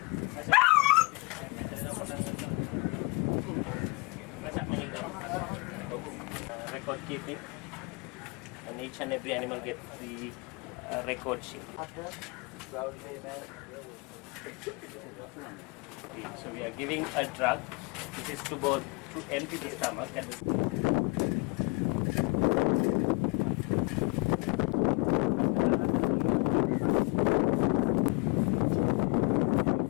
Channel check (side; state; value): right; quieter; 29.4 dB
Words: Record keeping, and each and every animal gets the record sheet. So we are giving a drug. This is to empty the stomach and